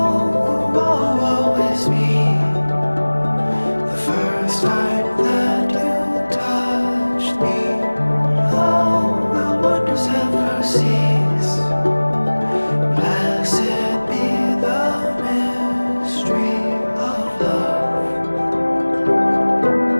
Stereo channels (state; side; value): inverted; both; correlation -1.00